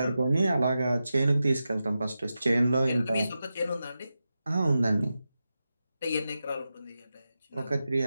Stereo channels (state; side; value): inverted; both; correlation -0.91